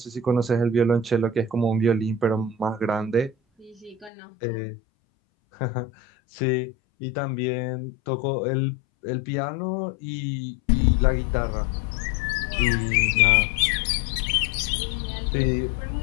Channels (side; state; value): right; drops out; at 4.1 s